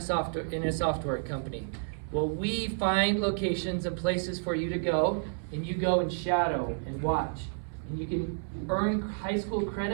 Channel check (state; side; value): silent; left; 57 dB below the other